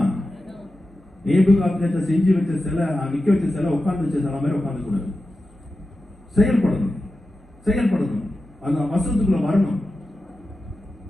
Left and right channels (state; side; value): normal; both; correlation 0.92